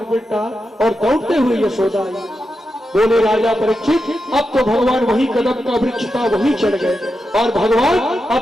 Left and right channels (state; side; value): normal; both; correlation 0.88